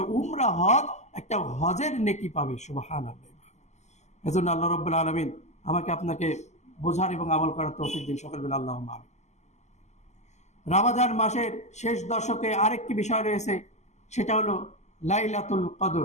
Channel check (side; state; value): right; late; 0.33 ms